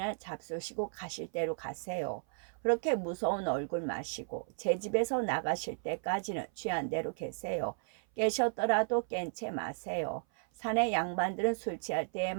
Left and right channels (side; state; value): left; silent; 55 dB below the other